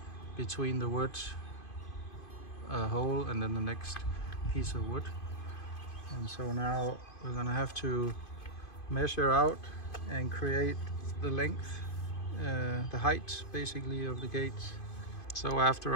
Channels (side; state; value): right; late; 2.5 ms